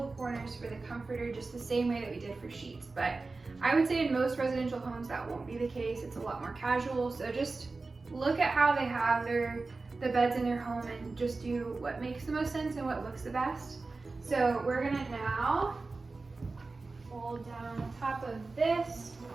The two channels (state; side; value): quieter; left; 3.7 dB